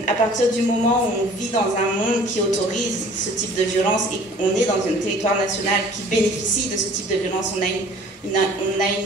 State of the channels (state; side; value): normal; both; correlation 0.51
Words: à partir du moment où on vit dans un monde qui autorise ce type de violence et qu'on est dans un territoire national qui bénéficie de ce type de violence, on a